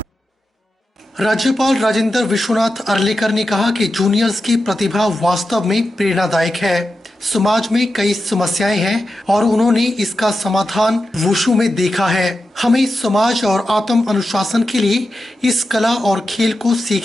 राज्यपाल राजेंद्र विश्वनाथ आर्लेकर ने कहा कि जूनियर्स की प्रतिभा वास्तव में प्रेरणादायक है। समाज में कई समस्याएं हैं और उन्होंने इसका समाधान वुशु में देखा है। हमें समाज और आत्म अनुशासन के लिए इस कला और खेल को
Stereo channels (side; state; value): both; normal; correlation 0.90